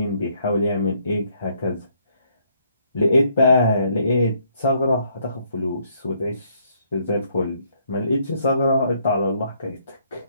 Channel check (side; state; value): both; inverted; correlation -0.69